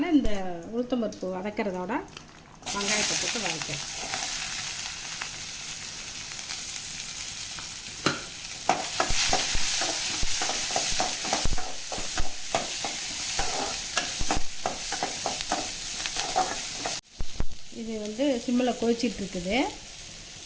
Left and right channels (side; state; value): both; identical; correlation 1.00